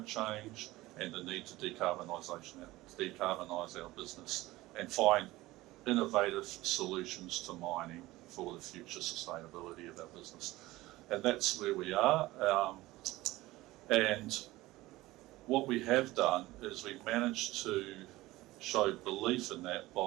change and the need to decarbonise our business and find innovative solutions to mining for the future sustainability of our business. And that's where we are. And what we have done is we've managed to show belief in that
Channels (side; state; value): left; quieter; 18.5 dB